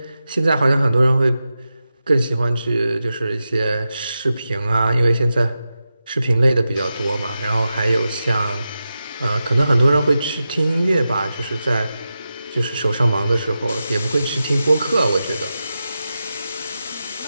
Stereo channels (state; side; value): inverted; both; correlation -0.91